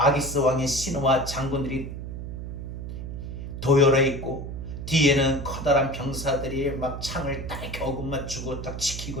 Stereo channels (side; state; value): right; noise; hum, 7 dB below the sound